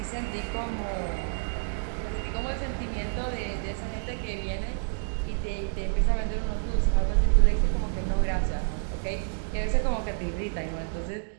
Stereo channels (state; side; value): silent; left; 59 dB below the other